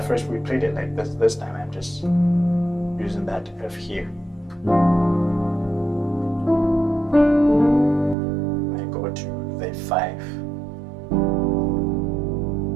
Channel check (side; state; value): left; drops out; at 8.2 s